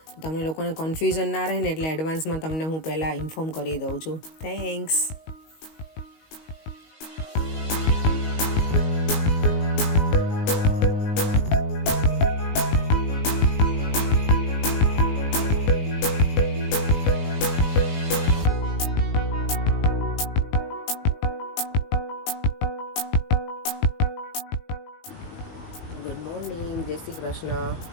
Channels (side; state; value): right; late; 19 ms